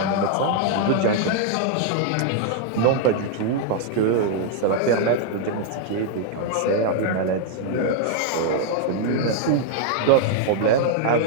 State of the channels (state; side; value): different; both; correlation 0.00